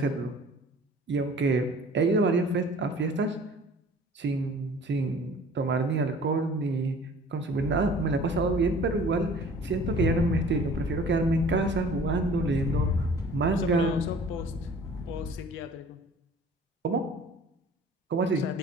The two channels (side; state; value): both; normal; correlation 0.48